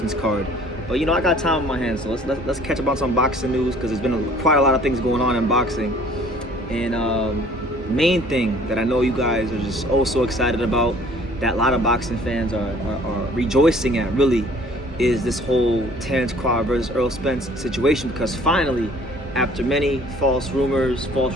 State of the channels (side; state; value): both; normal; correlation 0.54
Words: card. But you know, I got time on my hands, so let's catch up on some boxing news, because there's been quite a lot of things going on in boxing. And main thing that I know you guys are just so excited about, that a lot of boxing fans are rejoicing at, really, is this whole Terence Crawford versus Errol Spence situation. Because finally, after many false rumors,